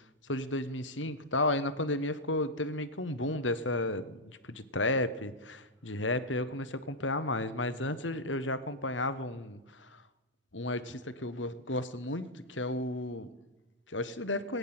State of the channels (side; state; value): both; normal; correlation -0.02